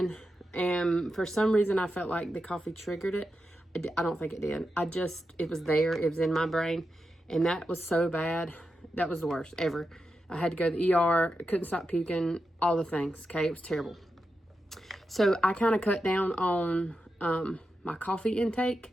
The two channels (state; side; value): normal; both; correlation 0.89